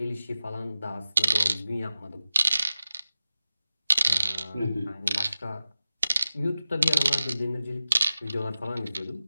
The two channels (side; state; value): both; inverted; correlation -0.94